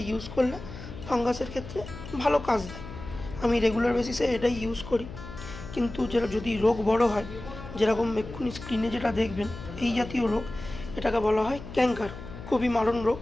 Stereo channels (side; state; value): left; noise; hum, 12 dB below the sound